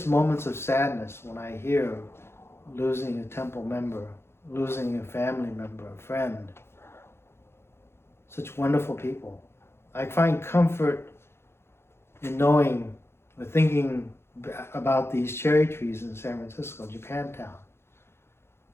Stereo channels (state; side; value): late; right; 0.12 ms